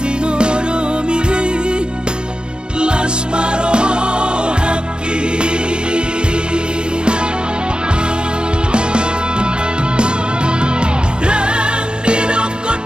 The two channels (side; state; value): left; late; 0.053 ms